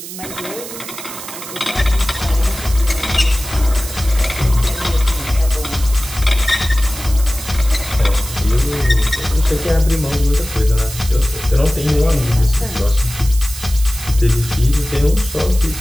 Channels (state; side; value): noise; right; hiss, 11 dB below the sound